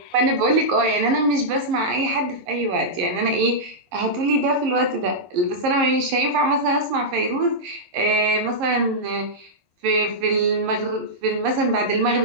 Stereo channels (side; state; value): left; late; 11 ms